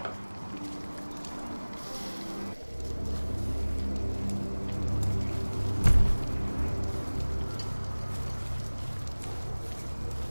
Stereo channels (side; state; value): both; inverted; correlation -1.00